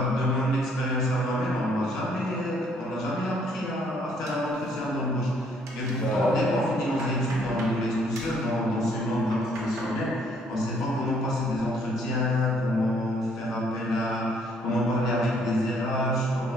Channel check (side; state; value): both; normal; correlation 0.65